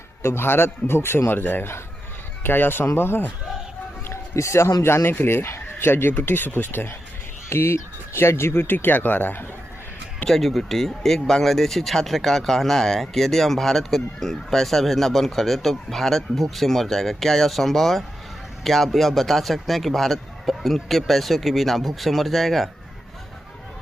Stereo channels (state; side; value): normal; both; correlation 0.88